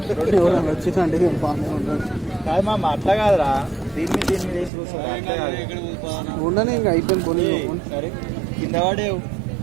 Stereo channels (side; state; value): left; drops out; at 4.7 s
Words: ఎవరైనా వచ్చిందంటే బాగానే ఉంటుంది. కాదు మా అట్లా కాదురా, దీన్ని వేసి కూర్చోండి. ఉండని ఇంకా అయిపోయింది కొని. సరే కింద పడేవు.